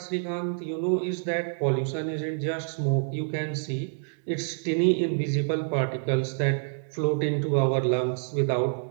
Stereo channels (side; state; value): left; silent; digital silence